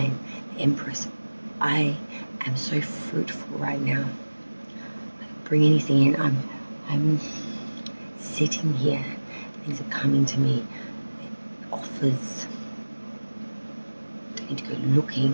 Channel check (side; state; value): both; inverted; correlation -1.00